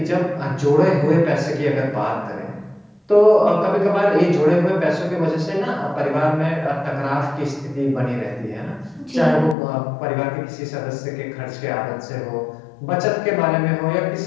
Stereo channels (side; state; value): right; drops out; at 9.6 s